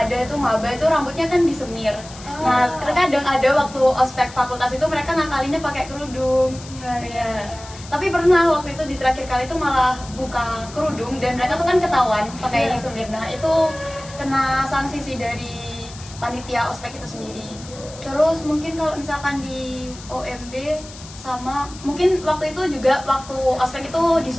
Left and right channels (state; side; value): noise; left; hiss, 17 dB below the sound